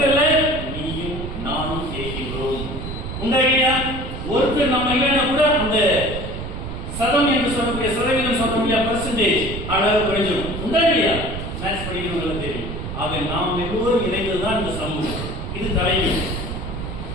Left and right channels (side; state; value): right; noise; rumble, 7 dB below the sound